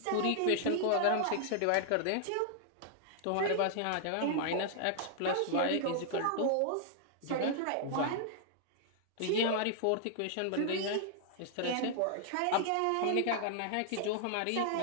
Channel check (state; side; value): different; both; correlation -0.01